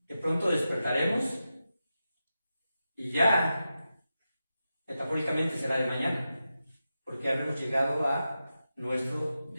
De pronto despertaremos y ya, metafóricamente será de mañana, porque habremos llegado a nuestro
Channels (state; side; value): inverted; both; correlation -0.90